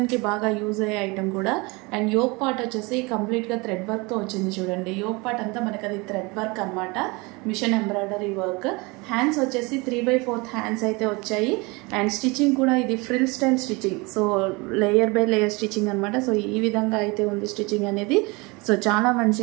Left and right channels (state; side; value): quieter; left; 26.3 dB